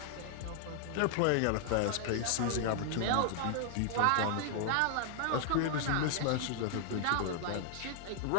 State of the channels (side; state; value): both; different; correlation 0.00